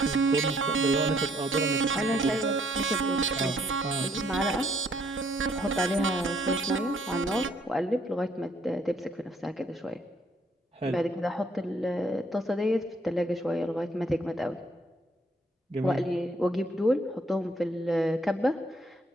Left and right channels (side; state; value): both; normal; correlation 0.66